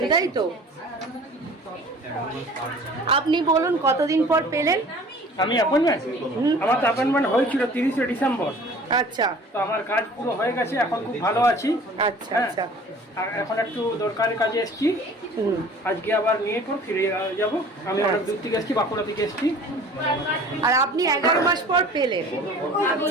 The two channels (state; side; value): normal; both; correlation 0.46